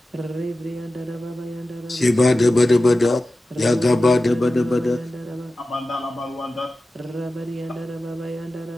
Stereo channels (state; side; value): normal; both; correlation 0.94